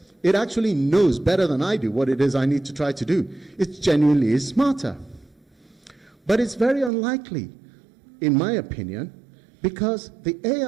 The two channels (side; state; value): left; drops out; at 6.9 s